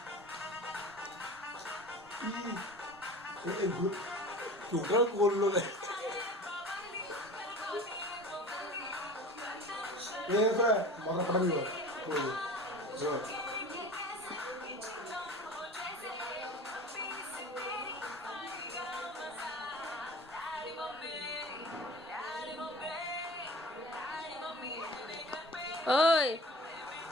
টোটাল করলো না। মাথা ফাটাবি ওই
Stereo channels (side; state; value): both; normal; correlation 0.39